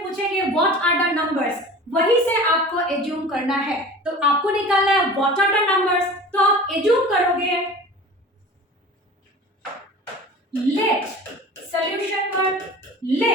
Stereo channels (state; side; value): normal; both; correlation 0.39